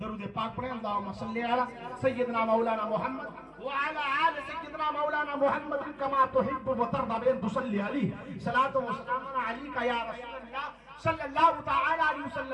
پاک پڑھیں. اللہم صلی علی سیدنا مولانا محمد وعلی آل سیدنا مولانا محمد کما تحب و ترضى بأن تصلی علیہ صلاۃ و سلام علیک یا رسول اللہ صلی اللہ تعالی علیہ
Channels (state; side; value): identical; both; correlation 1.00